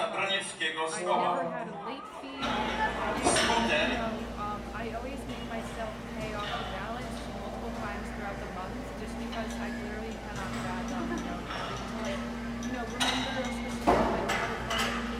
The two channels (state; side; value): identical; both; correlation 1.00